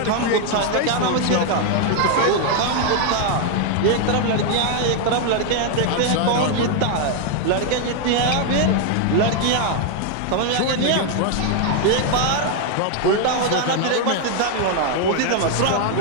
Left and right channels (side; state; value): both; different; correlation 0.00